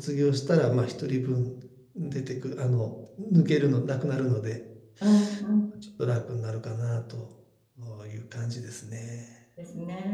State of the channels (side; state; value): both; identical; correlation 1.00